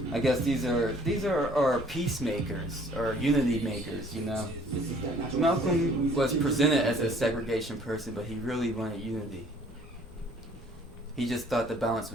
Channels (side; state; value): both; normal; correlation 0.56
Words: I guess these are peacemakers or unity makers, you know. Malcolm was presented as a segregation person, but he really wanted unity. He just thought the balance